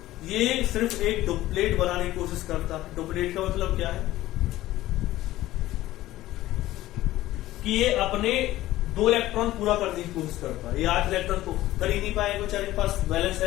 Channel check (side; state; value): right; quieter; 15.7 dB